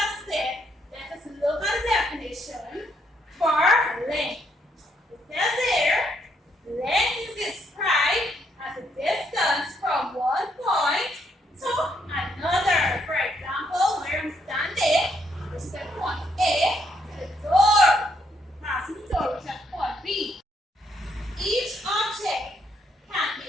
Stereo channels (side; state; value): both; normal; correlation 0.74